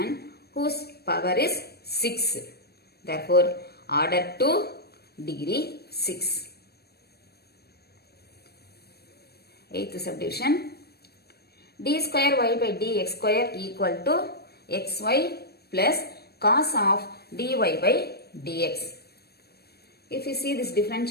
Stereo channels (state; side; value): late; right; 0.47 ms